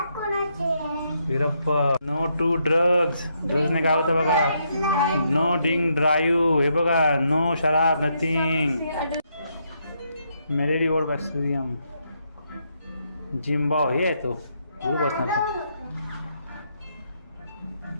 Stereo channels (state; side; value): inverted; both; correlation -0.77